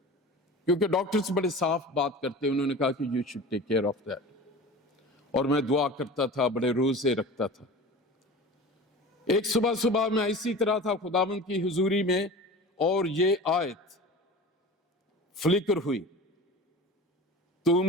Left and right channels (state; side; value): normal; both; correlation 0.36